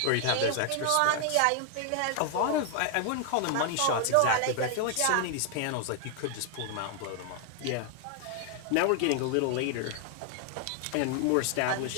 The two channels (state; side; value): different; both; correlation 0.00